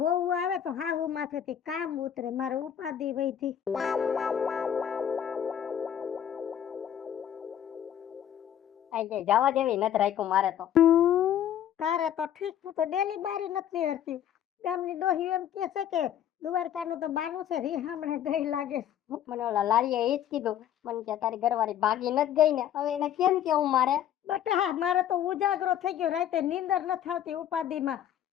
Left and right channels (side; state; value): right; quieter; 10.1 dB